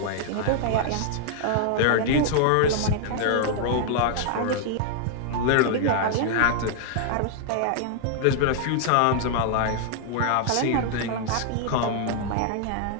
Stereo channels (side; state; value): both; different; correlation 0.00